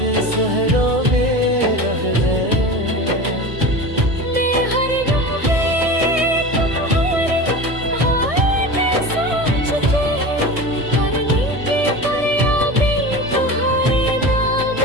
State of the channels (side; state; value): left; late; 1.6 ms